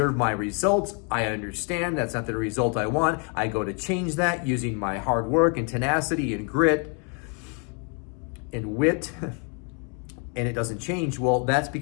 my results. I understand that's not the result I want. I go to change that using my hard work and tenacity and grit and wit, and it doesn't change. Well, that's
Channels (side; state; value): right; quieter; 37.8 dB